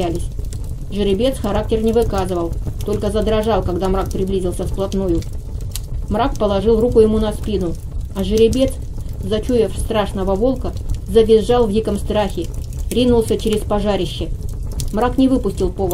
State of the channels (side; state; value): both; identical; correlation 1.00